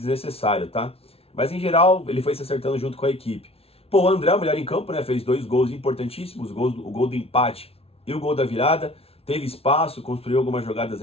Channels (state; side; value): late; right; 0.28 ms